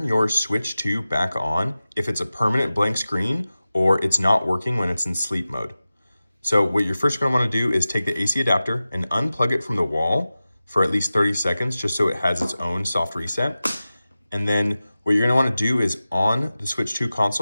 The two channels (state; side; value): inverted; both; correlation -0.95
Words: your Switch 2 back on if it's a permanent blank screen or it's not working when it's in sleep mode. So what you're first going to want to do is take the AC adapter and unplug it from the wall for at least 30 seconds just so it has its own soft reset. And then what you're going to want to do is on the Switch 2